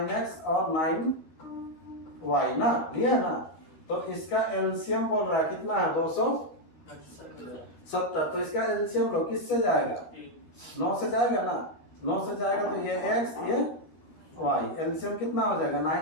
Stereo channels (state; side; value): late; right; 12 ms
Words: और 9y ना लिए ना, तो इसका एलसीएम बोल रहा है कितना है, 270। तो इसका एलसीएम लो, किससे जाएगा, 9 से जाएगा ना, 9 से जाएगा तो ये x ये y, एलसीएम कितना हो जाएगा,